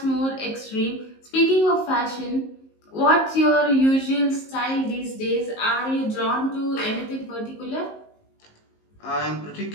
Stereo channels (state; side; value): late; right; 19 ms